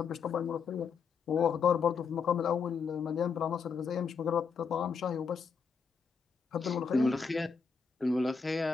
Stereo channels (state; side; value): quieter; right; 5.7 dB